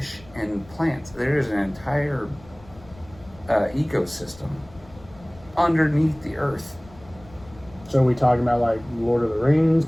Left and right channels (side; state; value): left; noise; rumble, 22 dB below the sound